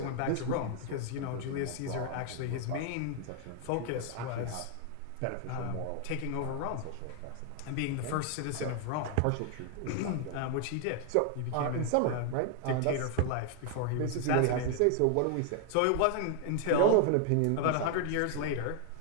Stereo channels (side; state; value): both; different; correlation 0.00